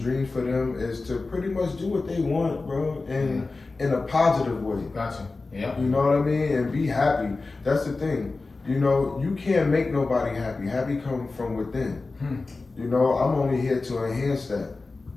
dreams for them is to pretty much do what they want, bro, and in a positive way. Gotcha. Yeah. You know what I mean? And be happy. That's the thing. You know, you can't make nobody happy. Happy comes from within. You know, I'm only here to enhance that.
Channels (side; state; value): right; quieter; 3.7 dB